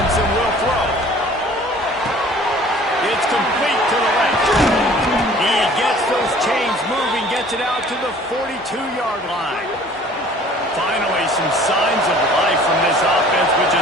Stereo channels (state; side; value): normal; both; correlation 0.50